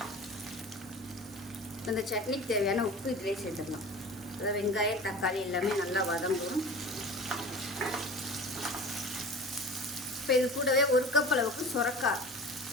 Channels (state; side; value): normal; both; correlation 0.37